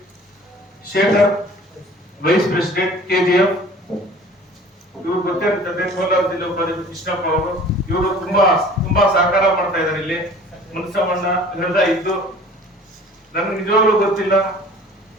Shekhar vice president KGF, ಇವರು ಗೊತ್ತಿರ್ತದೆ. ಕೋಲಾರ ಜಿಲ್ಲಾ ಉಪಾಧ್ಯಕ್ಷ ಕೃಷ್ಣಪ್ಪ ಅವರು, ಇವರು ತುಂಬಾ ಸಹಕಾರ ಮಾಡ್ತಾ ಇದ್ದಾರೆ. ಇಲ್ಲಿ ಮುನಿಸ್ವಾಮಣ್ಣ ಹೃದಯ ಇದ್ದು ನನಗೆ ನಿಜವಾಗ್ಲೂ ಗೊತ್ತಿಲ್ಲ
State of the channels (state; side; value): normal; both; correlation 0.47